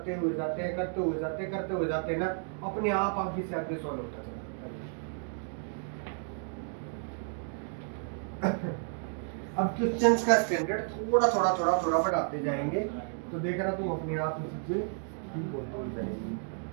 हुए जाते हैं, करते हुए जाते हैं ना, अपने आप आगे से आगे सॉल्व होता चला जाता है। अब क्वेश्चंस का स्टैंडर्ड थोड़ा बढ़ाते जाएंगे तो देखना तुम अपने आप में सबसे ठीक होते जाएंगे।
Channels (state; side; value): silent; left; 56 dB below the other